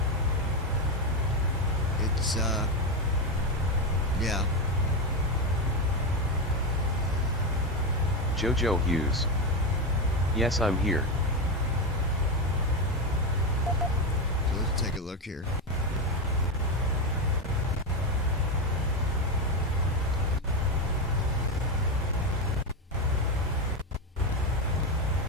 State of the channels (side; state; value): both; normal; correlation 0.11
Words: it's Yeah. Jojo Hughes. Yes, I'm here. So let's take a look here.